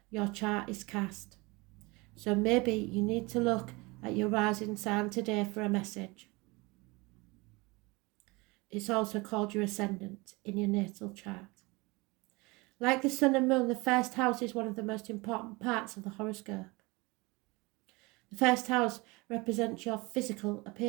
your chart is cast. So maybe you need to look at your rising sign today for a message. It's also called your ascendant in your natal chart. Like the sun and moon, the first house is one of the most important parts of the horoscope. The first house represents your physical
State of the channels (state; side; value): quieter; left; 24.8 dB